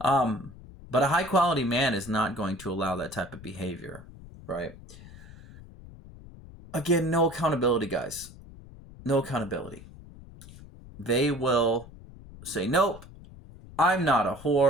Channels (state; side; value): noise; left; rumble, 18 dB below the sound